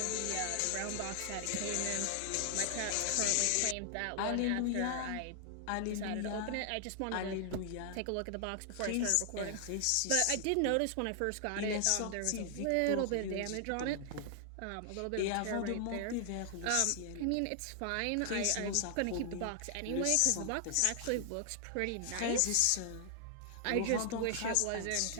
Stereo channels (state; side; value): different; both; correlation 0.00